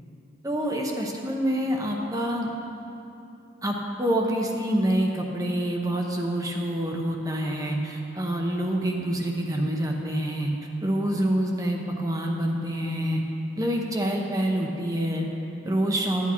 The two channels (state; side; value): normal; both; correlation 0.77